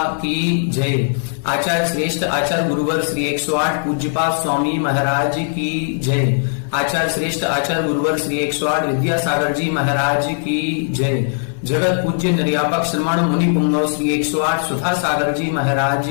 की जय। आचार्य श्रेष्ठ आचार्य गुरुवर श्री 108 पूज्यपाद स्वामी महाराज की जय। आचार्य श्रेष्ठ आचार्य गुरुवर श्री 108 विद्यासागर जी महाराज की जय। जगत पूज्य निर्यापक श्रमण मुनि पुंगव श्री 108 सुधा सागर जी महाराज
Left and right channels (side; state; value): right; silent; 61 dB below the other